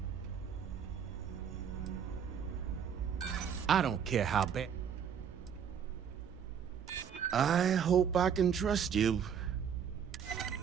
I don't care how bad. I hope I can trust you.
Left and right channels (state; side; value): quieter; left; 7.9 dB